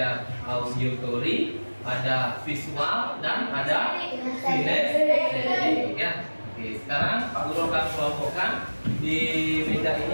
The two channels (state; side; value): inverted; both; correlation -1.00